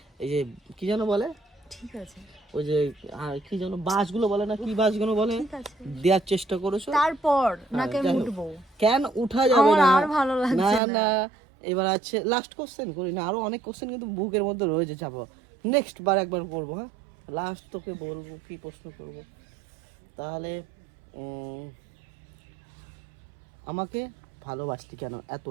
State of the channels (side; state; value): left; drops out; at 10.8 s